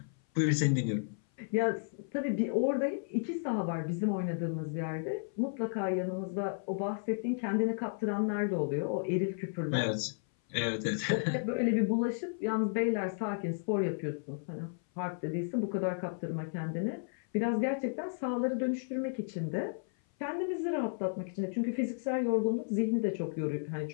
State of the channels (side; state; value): right; silent; 56 dB below the other